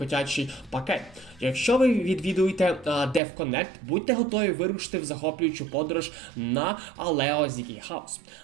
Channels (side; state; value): left; drops out; at 3.2 s